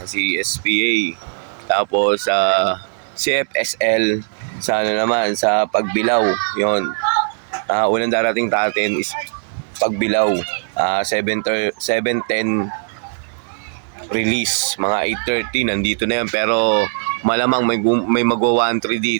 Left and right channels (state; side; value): silent; left; digital silence